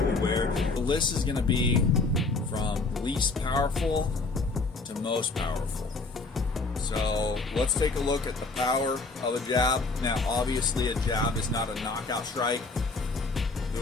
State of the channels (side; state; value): right; quieter; 3.7 dB